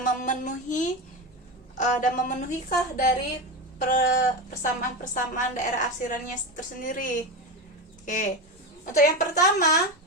memenuhikah dari persamaan-persamaan daerah arsirannya tersendiri. Oke. Untuk yang pertama,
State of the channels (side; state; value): both; normal; correlation 0.19